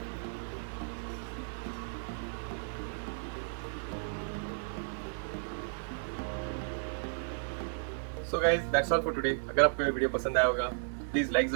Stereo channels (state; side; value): silent; left; digital silence